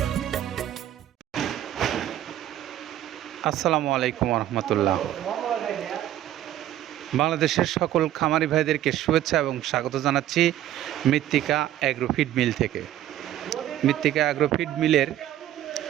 আসসালামু আলাইকুম রহমতুল্লাহ। বাংলাদেশের সকল খামারি ভাইদেরকে শুভেচ্ছা এবং স্বাগত জানাচ্ছি মৃত্তিকা অ্যাগ্রোফিড মিল থেকে। মৃত্তিকা অ্যাগ্রোফিড মিলের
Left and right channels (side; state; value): left; quieter; 12.6 dB